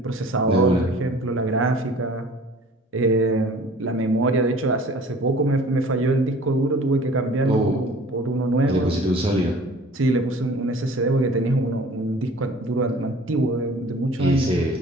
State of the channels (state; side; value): normal; both; correlation 0.48